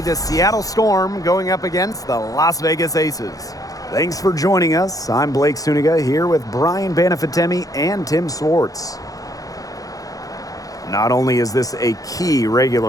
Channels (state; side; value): late; right; 0.17 ms